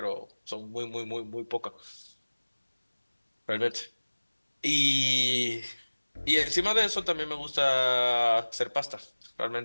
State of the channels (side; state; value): both; inverted; correlation -1.00